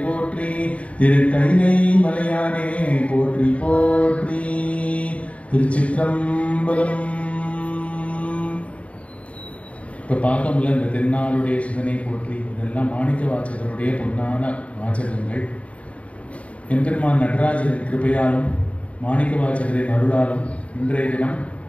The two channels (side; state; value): right; late; 0.065 ms